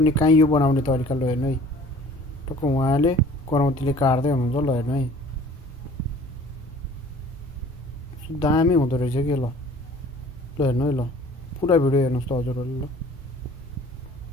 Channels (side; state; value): both; normal; correlation 0.49